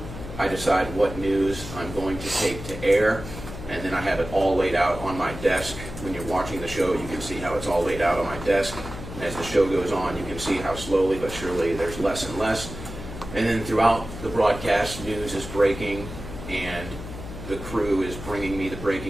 I decide what news I'm going to take to air, and then I have it all laid out on my desk. When you're watching the show, you can see how it's all laid out on my desk. And as the show goes on, you can see how slowly but surely there's less and less. And then throughout the broadcast, news is breaking, and the crew is bringing me the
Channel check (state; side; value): noise; left; hum, 10 dB below the sound